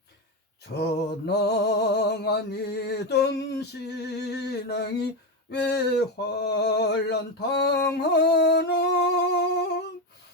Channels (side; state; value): both; normal; correlation 0.13